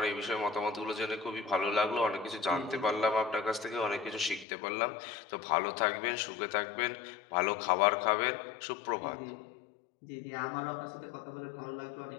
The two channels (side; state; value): right; drops out; at 4.5 s